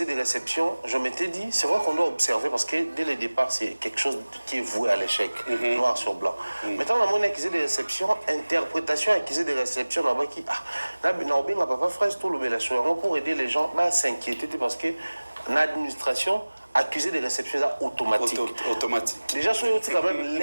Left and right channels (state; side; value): inverted; both; correlation -1.00